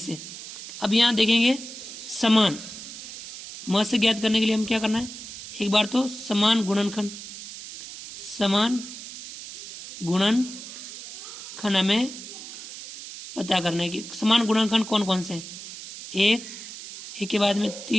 अब यहाँ देखेंगे समान म से ज्ञात करने के लिए हम क्या करना है? एक बार तो समान गुणनखंड हमें पता करना है कि समान गुणनखंड कौन कौन से हैं। 1, 1 के बाद में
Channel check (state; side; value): noise; right; hiss, 12 dB below the sound